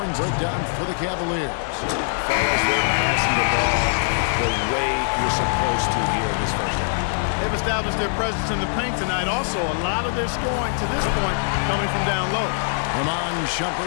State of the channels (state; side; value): silent; right; digital silence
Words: breakdown for the Cavaliers. Fellas, they're passing the ball the way you're supposed to here in this first half. They've established their presence in the paint tonight. Also, a lot of their scoring to this point coming from down low. Ramon